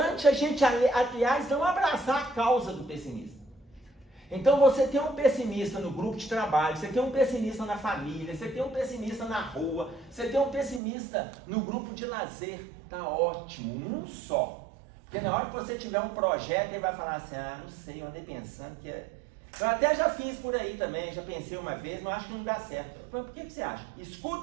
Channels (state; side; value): drops out; left; at 10.8 s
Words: a gente, aliás, não abraçar a causa do pessimista. Então você tem um pessimista no grupo de trabalho, você tem um pessimista na família, você tem um pessimista na rua, você tem um pessimista no grupo de lazer. Tá ótimo, um só. Porque na hora que você tiver um projeto, ele vai falar assim, não sei, eu andei pensando que é... Eu até já fiz por aí também, já pensei uma vez, mas acho que não dá certo. Mas por que você acha?